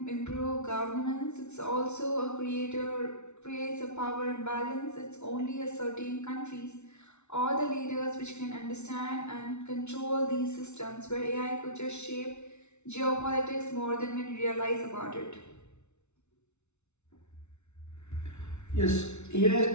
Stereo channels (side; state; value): right; late; 0.82 ms